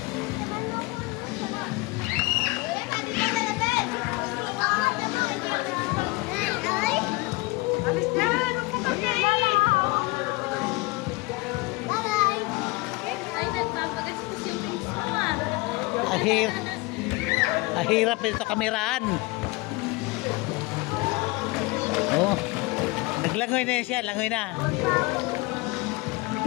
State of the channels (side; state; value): right; quieter; 23.7 dB